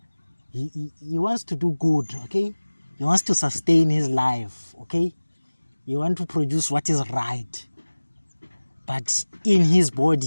he wants to do good. Okay, he wants to sustain his life. Okay, he wants to produce what is right, but in his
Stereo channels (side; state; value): both; inverted; correlation -1.00